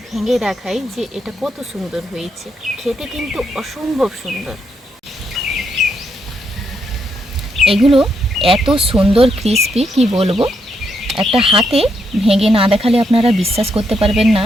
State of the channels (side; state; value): both; normal; correlation 0.78